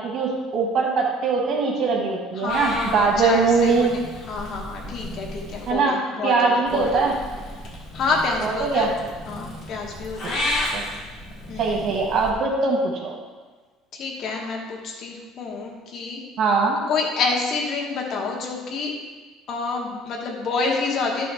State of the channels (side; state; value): both; normal; correlation 0.51